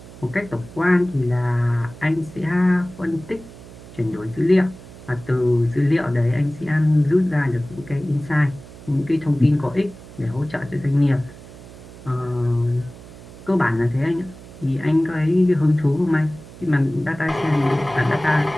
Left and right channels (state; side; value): noise; right; hum, 18 dB below the sound